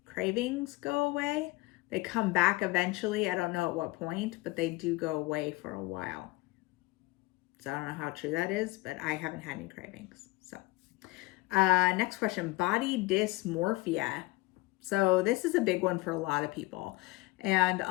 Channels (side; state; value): right; quieter; 21.7 dB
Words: cravings go away. They come back eventually. I don't know at what point, but they do go away for a while. So I don't know how true that is, but I haven't had any cravings. So next question, body dysmorphia. So this is a big one for a lot of people. And